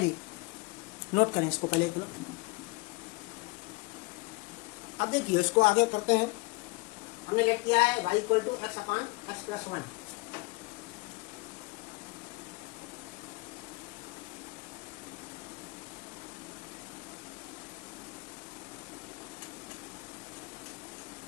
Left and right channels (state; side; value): quieter; right; 26.4 dB